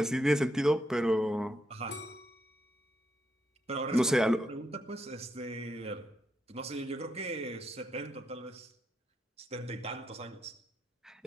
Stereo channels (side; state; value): both; normal; correlation 0.81